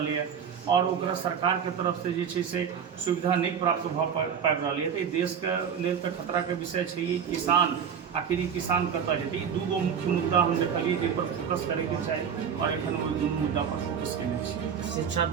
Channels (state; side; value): quieter; left; 7.5 dB